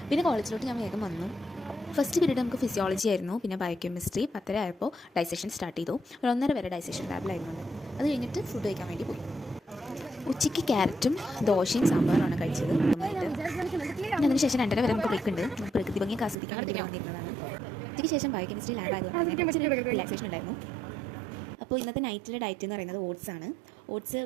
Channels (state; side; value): drops out; left; at 16.4 s